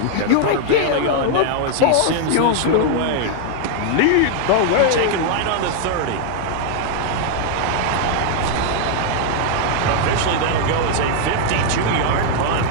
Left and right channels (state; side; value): different; both; correlation 0.00